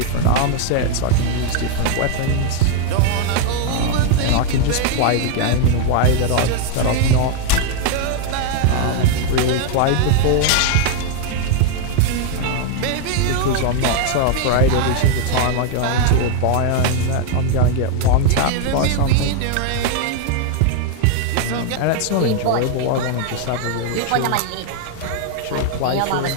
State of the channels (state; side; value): different; both; correlation 0.00